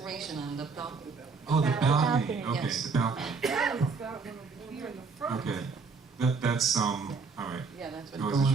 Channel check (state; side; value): quieter; left; 4.7 dB